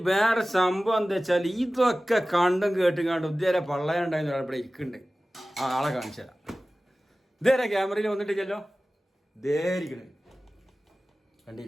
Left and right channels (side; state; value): both; normal; correlation 0.97